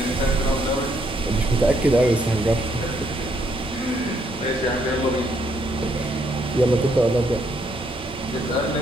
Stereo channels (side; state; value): both; normal; correlation 0.72